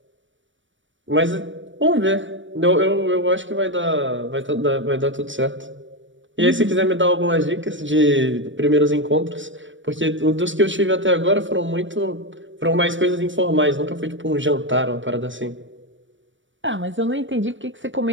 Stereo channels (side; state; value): left; late; 0.56 ms